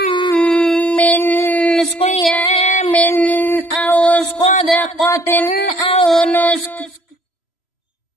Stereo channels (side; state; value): right; late; 3.0 ms